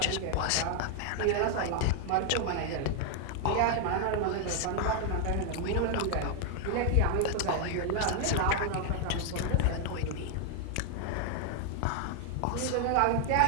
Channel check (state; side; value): different; both; correlation 0.00